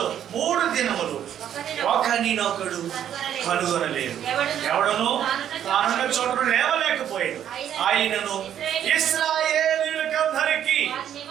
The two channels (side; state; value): left; quieter; 10.1 dB